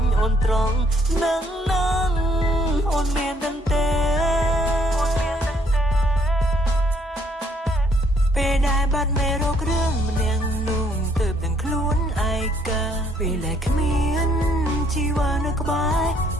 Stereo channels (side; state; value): both; normal; correlation 0.66